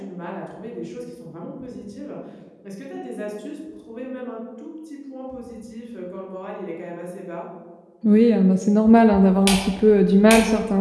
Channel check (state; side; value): identical; both; correlation 1.00